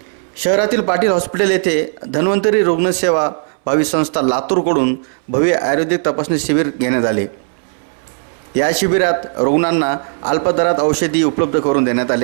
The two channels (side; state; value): left; silent; 67 dB below the other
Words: शहरातील पाटील हॉस्पिटल येथे धन्वंतरी रुग्णसेवा भावी संस्था लातूरकडून भव्य आयुर्वेदिक तपासणी शिबिर घेण्यात आले। या शिबिरात रुग्णांना अल्प दरात औषधी उपलब्ध करून देण्यात